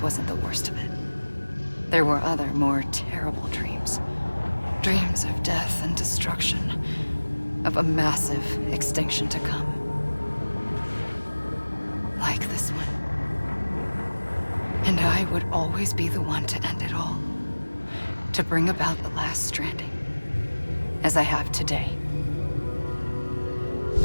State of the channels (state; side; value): inverted; both; correlation -1.00